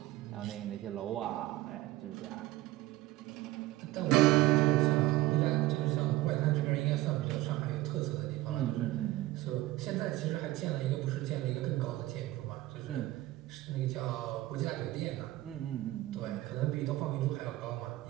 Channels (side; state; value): left; quieter; 17.4 dB